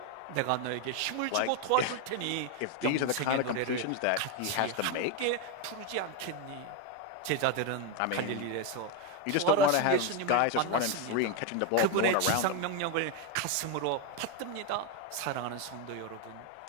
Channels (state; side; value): different; both; correlation 0.02